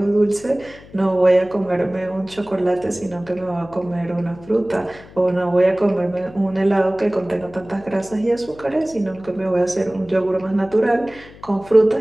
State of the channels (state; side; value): noise; left; hum, 21 dB below the sound